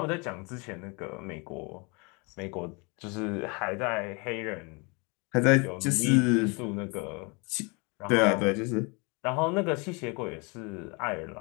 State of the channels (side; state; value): right; quieter; 30.2 dB